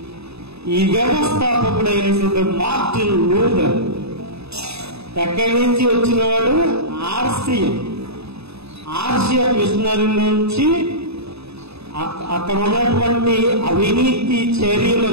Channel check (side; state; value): left; late; 0.79 ms